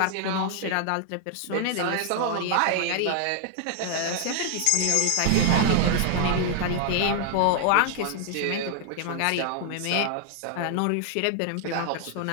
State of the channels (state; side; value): different; both; correlation 0.00